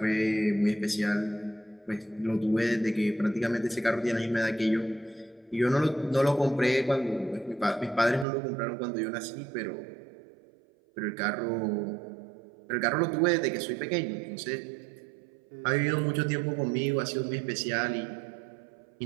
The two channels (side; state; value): left; drops out; at 8.2 s